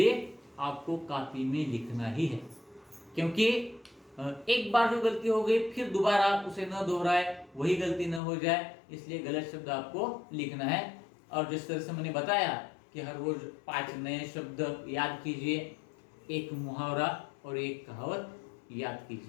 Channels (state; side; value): drops out; right; at 8.2 s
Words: आपको कॉपी में लिखना ही है। क्योंकि एक बार जो गलती हो गई फिर दोबारा उसे न दोहराए, वही गलती न हो जाए, इसलिए गलत शब्द आपको लिखना है। और जिस तरह से मैंने बताया कि हर रोज 5 नए शब्द याद कीजिए, एक मुहावरा और एक कहावत याद